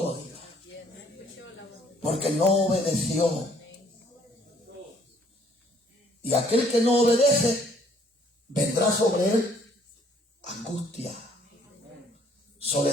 diga. Porque no obedeció. Y aquel que no obedece, vendrá sobre él angustia,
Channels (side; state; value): both; normal; correlation 0.63